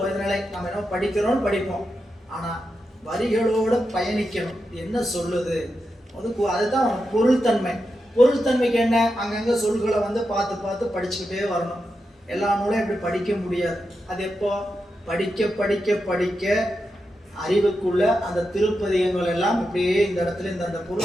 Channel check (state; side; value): normal; both; correlation 0.88